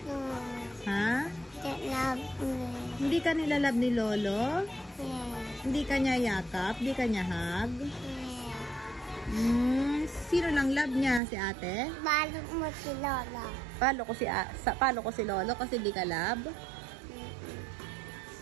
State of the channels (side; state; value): left; drops out; at 11.2 s